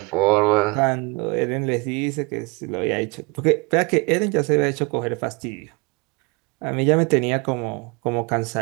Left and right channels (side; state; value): left; quieter; 27.3 dB